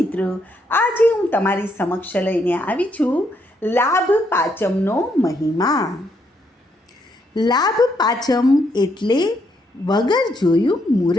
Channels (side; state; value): both; normal; correlation 0.75